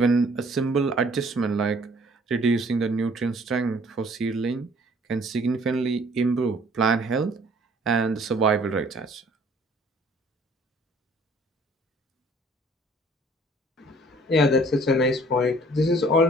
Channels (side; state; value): both; normal; correlation 0.56